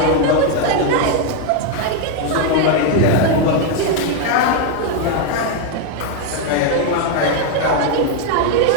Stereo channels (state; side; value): different; both; correlation 0.01